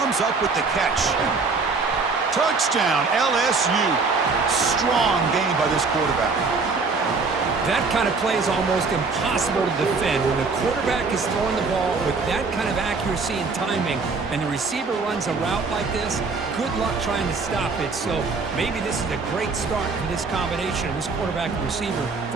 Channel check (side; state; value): left; quieter; 4.3 dB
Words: up with the catch. Touchdown, LSU. Strong game by this quarterback. That kind of play is almost impossible to defend. When the quarterback is throwing the ball with that kind of accuracy and timing, and the receiver runs a route like this, good luck trying to stop it. So maybe this is a great start for this combination of this quarterback and receiver